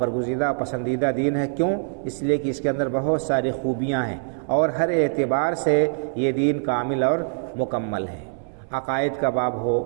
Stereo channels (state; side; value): silent; left; 63 dB below the other